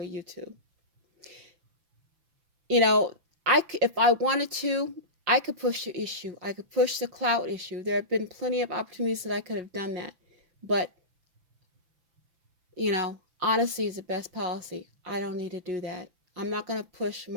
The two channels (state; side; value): late; left; 5.9 ms